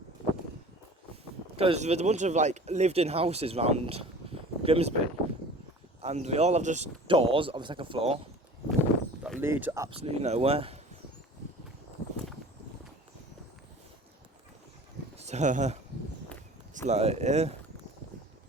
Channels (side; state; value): both; normal; correlation 0.43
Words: Because there's a bunch of like lived-in houses around Grimsby, and we all have just doors on the second floor that lead to absolutely nowhere. So it's like, yeah.